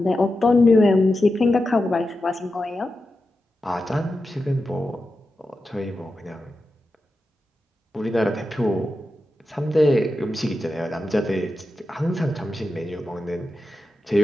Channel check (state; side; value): normal; both; correlation 0.90